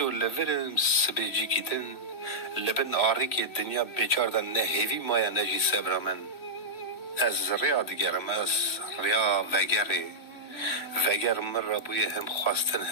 لورم سبیجی کیتن لبن آری که دنیا بیچاردن نه هیوی مایا نجی سبرامن از ریا دگرم از ریا وگر من را بوی هم خواستن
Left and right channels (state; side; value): late; right; 3.0 ms